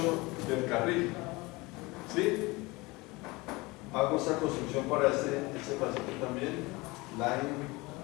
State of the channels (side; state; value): right; quieter; 23.3 dB